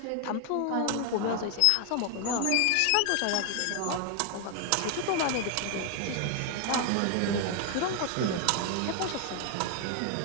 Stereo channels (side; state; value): both; different; correlation 0.00